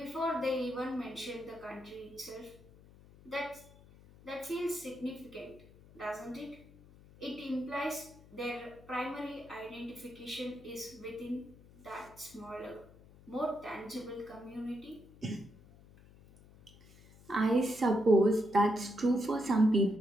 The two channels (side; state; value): left; noise; hum, 23 dB below the sound